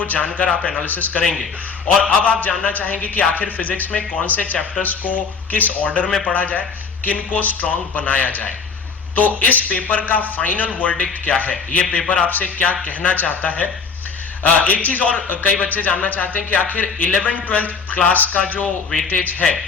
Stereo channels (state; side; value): quieter; right; 5.3 dB